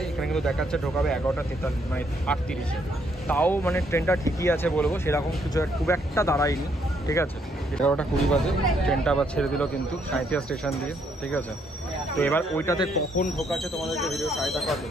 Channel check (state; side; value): normal; both; correlation 0.71